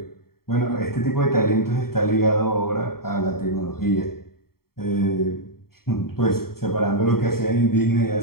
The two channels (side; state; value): right; late; 0.94 ms